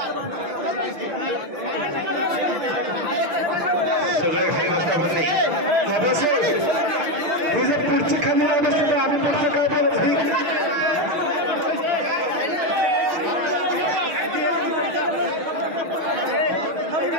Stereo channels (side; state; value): left; late; 6.3 ms